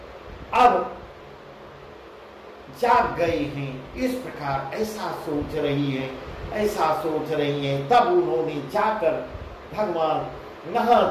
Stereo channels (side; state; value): both; identical; correlation 1.00